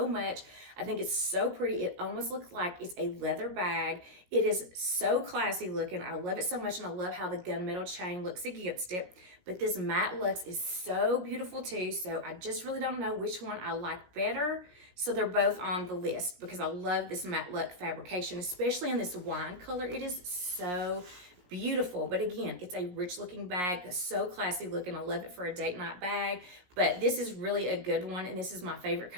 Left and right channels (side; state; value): left; late; 17 ms